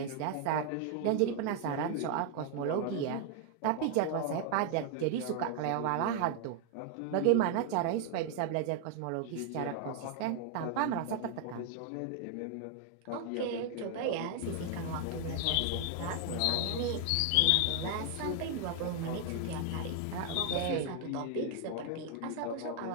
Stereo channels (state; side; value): different; both; correlation 0.00